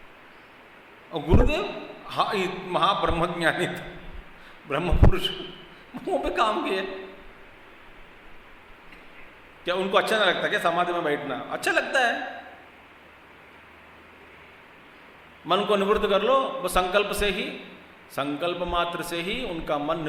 और गुरुदेव हाँ, महाब्रह्मज्ञानी था, ब्रह्म पुरुष, मुंह पे काम किए। क्या उनको अच्छा नहीं लगता क्या समाधि में बैठना? अच्छा लगता है। मन को निवृत्त कर लो, वो संकल्प से ही, संकल्प मात्र से ही उनका मन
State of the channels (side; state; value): both; identical; correlation 1.00